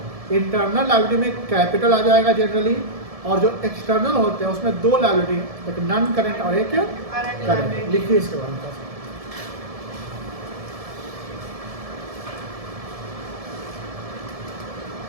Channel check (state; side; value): late; left; 1.7 ms